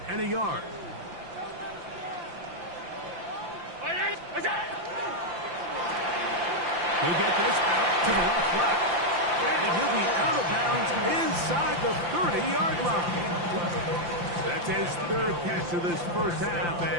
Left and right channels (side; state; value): left; late; 5.8 ms